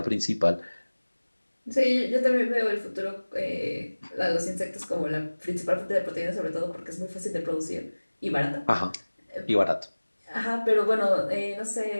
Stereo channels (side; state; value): both; inverted; correlation -1.00